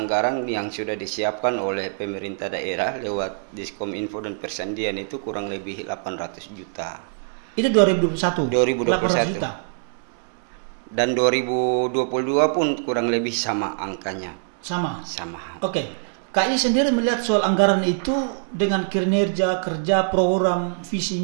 yang sudah disiapkan oleh pemerintah daerah lewat Diskominfo dan Persandian itu kurang lebih 800 juta. Itu 2021? 2021. 800 juta? Dan 2022 pun kurang lebih sama angkanya. Sama? Sama. Oke. KI sendiri melihat soal anggaran itu dengan kinerja, kerja, program, visi,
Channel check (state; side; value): silent; left; 63 dB below the other